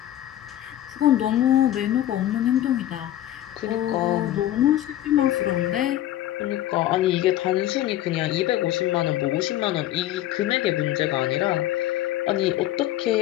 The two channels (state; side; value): quieter; right; 13.2 dB